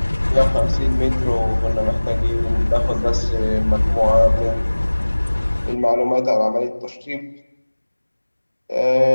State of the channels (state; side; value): inverted; both; correlation -1.00